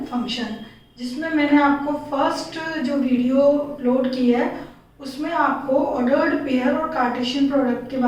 फंक्शन, जिसमें मैंने आपको फर्स्ट जो वीडियो अपलोड की है उसमें आपको ऑर्डर्ड पेयर और कार्टेशियन प्रोडक्ट के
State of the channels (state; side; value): identical; both; correlation 1.00